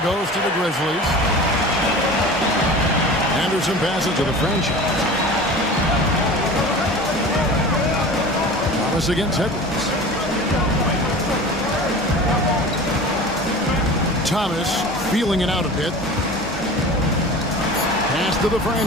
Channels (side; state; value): both; normal; correlation 0.37